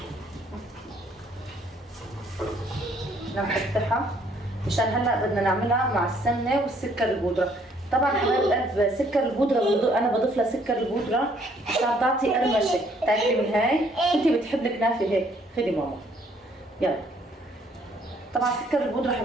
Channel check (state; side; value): normal; both; correlation 0.64